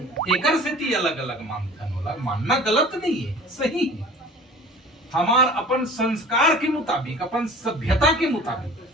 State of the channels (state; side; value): normal; both; correlation 0.44